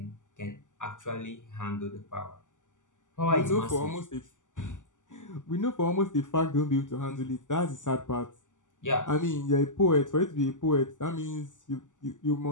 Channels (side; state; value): right; late; 0.87 ms